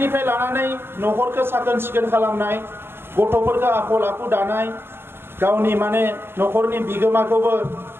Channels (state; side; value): late; left; 0.11 ms